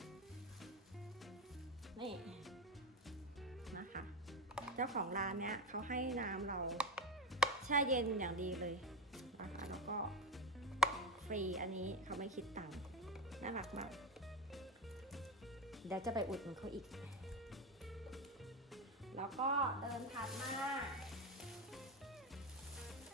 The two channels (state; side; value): normal; both; correlation 0.18